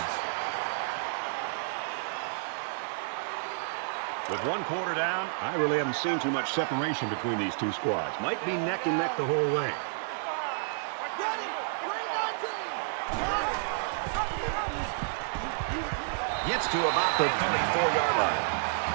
With 1 quarter down, I really haven't seen too much separation between these two squads. Might be neck and neck the whole way. Gets to about the 34-yard line.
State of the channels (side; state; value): left; silent; digital silence